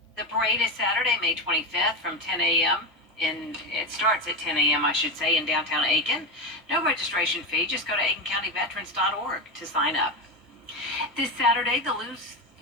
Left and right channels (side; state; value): both; normal; correlation 0.16